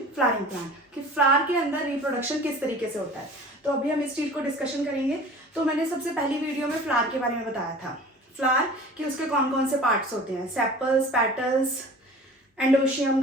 flowering plant, कि फ्लावर के अंदर रिप्रोडक्शन किस तरीके से होता है। तो अभी हम इस चीज को डिस्कशन करेंगे। तो मैंने सबसे पहली वीडियो में फ्लावर के बारे में बताया था, फ्लावर कि उसके कौन कौन से पार्ट्स होते हैं, sepals, petals, androecium,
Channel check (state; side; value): normal; both; correlation 0.42